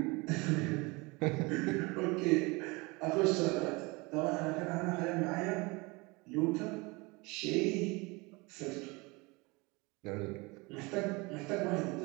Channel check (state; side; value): quieter; left; 25.7 dB